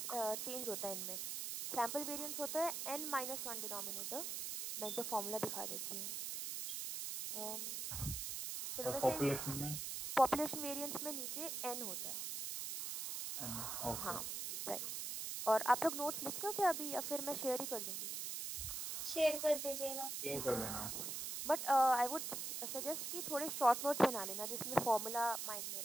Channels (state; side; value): noise; right; hiss, 4 dB below the sound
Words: चेंज होता है इनमें. सैम्पल वेरिएंस होता है n-1 डिनोमिनेटर. मैं एक बार फॉर्मूला दिखा देती हूँ. चलो वैसे पॉपुलेशन वेरिएंस में नीचे n होता है. हाँ राइट. और आप लोग नोट्स लिख लो क्या अभी, या फिर मैं शेयर ही कर दूँगी? शेयर कर दीजिएगा. शेयर कर देना. बट आई वुड सजेस्ट कि थोड़े शॉर्ट नोट्स बना लेना जिसमें फॉर्मूला माइंड में